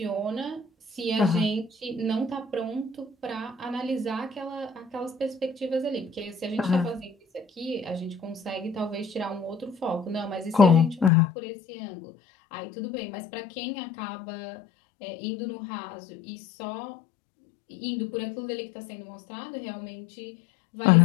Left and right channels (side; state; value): right; drops out; at 11.1 s